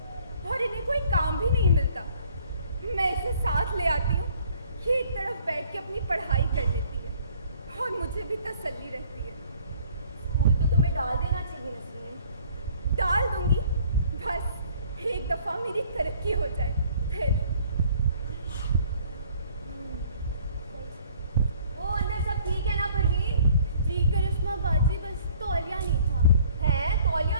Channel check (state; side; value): inverted; both; correlation -0.57